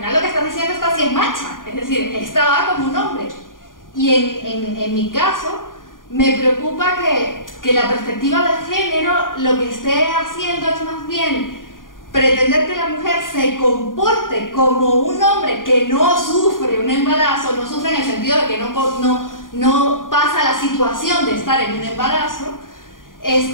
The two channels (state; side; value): late; right; 0.90 ms